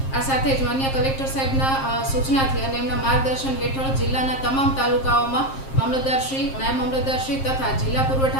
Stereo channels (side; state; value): right; late; 7.5 ms